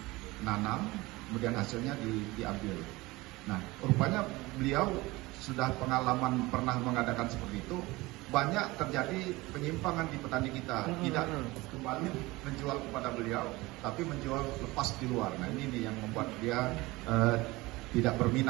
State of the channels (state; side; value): quieter; left; 21.1 dB